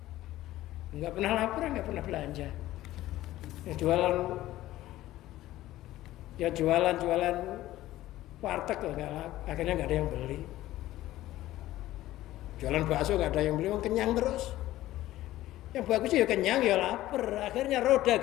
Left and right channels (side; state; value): right; quieter; 15.3 dB